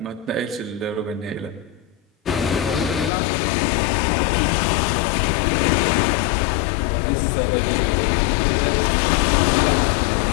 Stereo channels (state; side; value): drops out; right; at 3.1 s